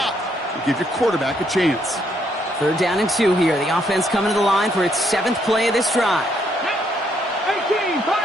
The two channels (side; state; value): both; normal; correlation 0.73